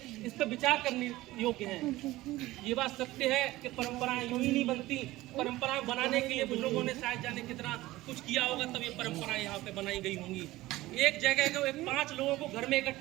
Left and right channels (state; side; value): quieter; left; 17.7 dB